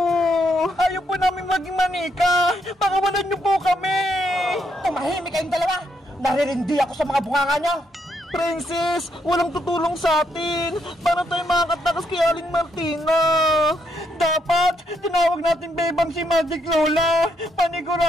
Ayaw po namin maging manika. Pakawalan niyo po kami. Tumahimik kayong dalawa. Naririndi ako sa mga bunganga niyo. Princess, walang tutulong sa atin. Para tayo makakatakas kay Aling Martina. Dapat, tinawag natin bebang si Magic Lola.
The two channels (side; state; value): both; normal; correlation 0.76